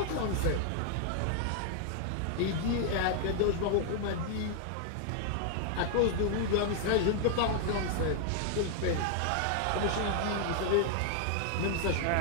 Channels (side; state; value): both; different; correlation 0.00